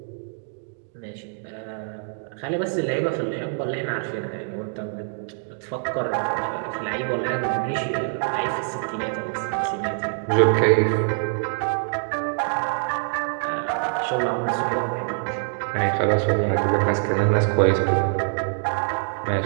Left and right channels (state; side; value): silent; left; 62 dB below the other